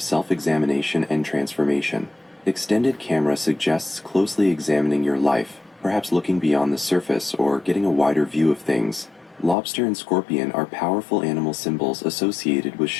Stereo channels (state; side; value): drops out; right; at 9.6 s